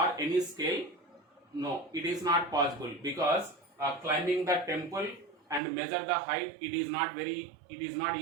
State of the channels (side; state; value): left; drops out; at 5.6 s